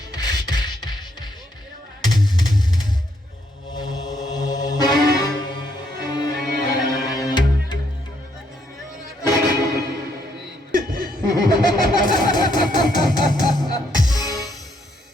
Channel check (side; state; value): both; normal; correlation 0.73